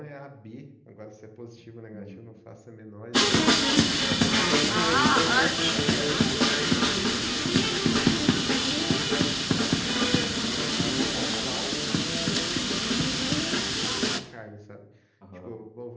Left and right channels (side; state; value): both; identical; correlation 1.00